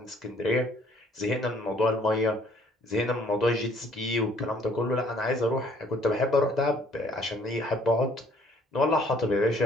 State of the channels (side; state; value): both; normal; correlation 0.60